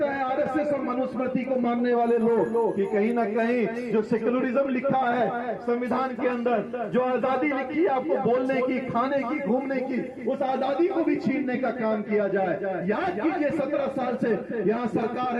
है आरएसएस और मनुस्मृति को मानने वाले लोग कि कहीं ना कहीं जो सेक्युलरिज्म लिखा है संविधान के अंदर, जो आजादी लिखी है आपको बोलने की, खाने की, घूमने की, उस आजादी को भी छीनने का काम किया जाए। याद कीजिए 17 साल से यहाँ सरकार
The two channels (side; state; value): both; identical; correlation 1.00